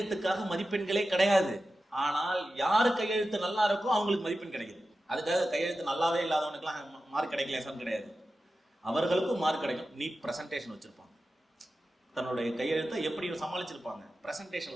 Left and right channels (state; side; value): normal; both; correlation 0.93